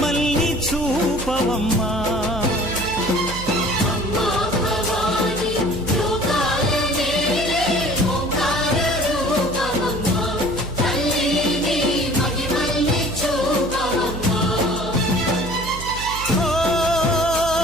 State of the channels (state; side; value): noise; right; hum, 10 dB below the sound